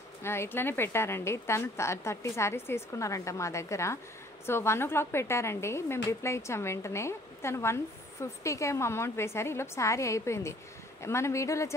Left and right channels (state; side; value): normal; both; correlation 0.57